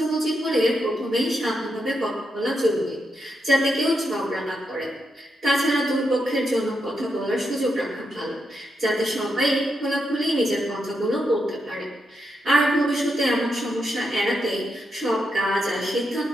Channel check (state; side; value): normal; both; correlation 0.83